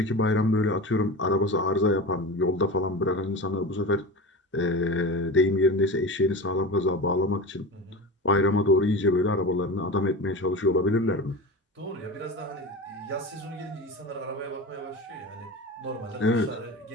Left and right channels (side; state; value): both; normal; correlation 0.28